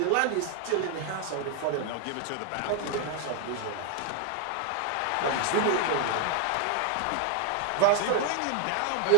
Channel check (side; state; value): both; different; correlation 0.00